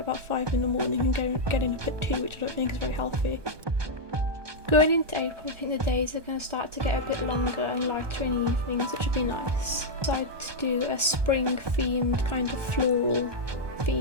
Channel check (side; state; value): left; late; 1.2 ms